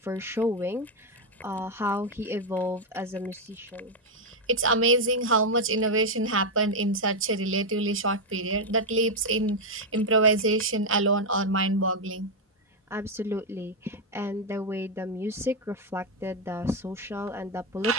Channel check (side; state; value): both; normal; correlation 0.02